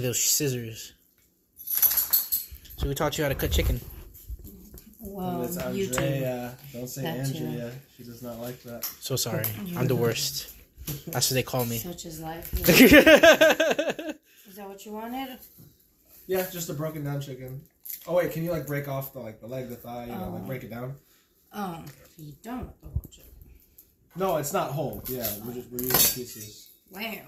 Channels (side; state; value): both; identical; correlation 1.00